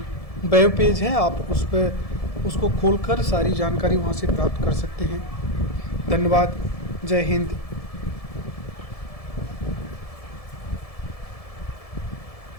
वेब पेज है, आप उस पर उसको खोलकर सारी जानकारी वहाँ से प्राप्त कर सकते हैं। धन्यवाद। जय हिंद।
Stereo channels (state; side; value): late; right; 1.7 ms